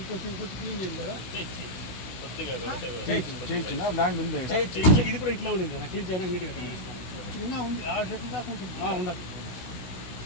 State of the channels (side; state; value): right; late; 16 ms